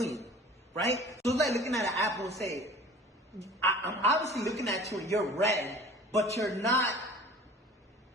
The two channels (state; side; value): normal; both; correlation 0.43